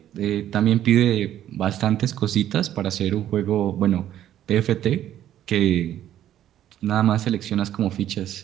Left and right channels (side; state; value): left; quieter; 11.7 dB